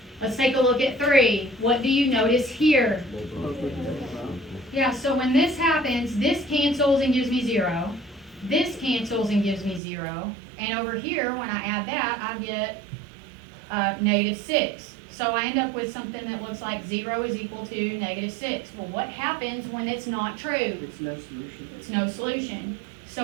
Let's take a look at 3. What do you notice here? Yeah, so when this happens, this cancels and gives me 0. This cancels and gives me 0. And over here, when I add that, I get negative 6. So I end up with something that looks like 0 is equal to negative 6. Well, what happens when it's not true? It's no solution. It's no solution.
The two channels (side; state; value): left; drops out; at 9.8 s